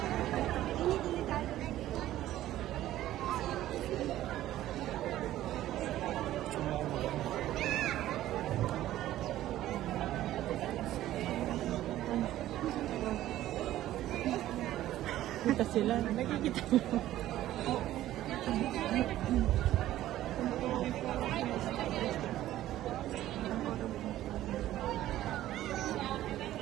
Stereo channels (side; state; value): left; quieter; 13.9 dB